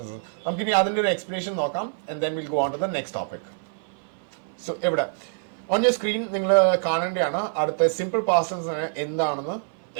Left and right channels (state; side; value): silent; left; 57 dB below the other